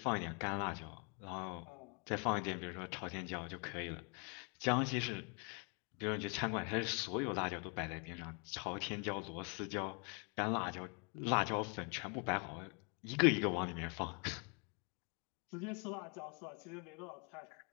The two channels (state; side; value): quieter; right; 36.0 dB